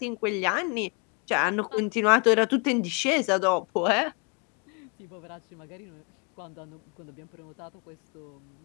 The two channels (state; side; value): quieter; right; 34.2 dB